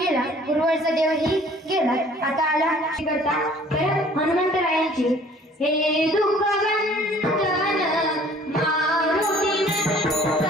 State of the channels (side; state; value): both; normal; correlation 0.54